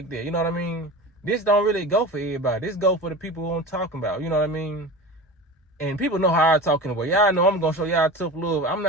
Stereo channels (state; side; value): normal; both; correlation 0.31